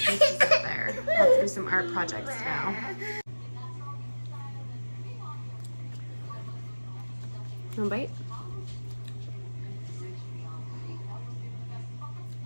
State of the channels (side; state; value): both; inverted; correlation -1.00